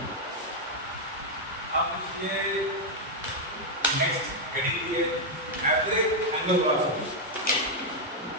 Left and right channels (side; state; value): both; normal; correlation -0.01